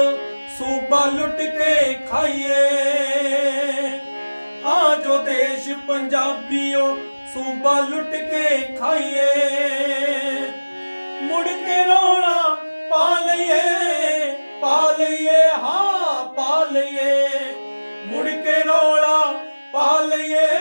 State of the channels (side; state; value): both; inverted; correlation -1.00